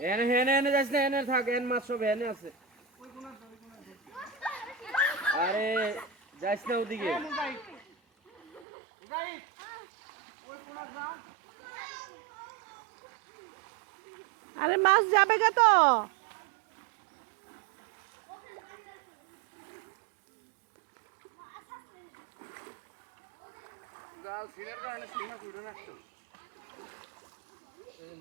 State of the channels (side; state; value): left; drops out; at 8.7 s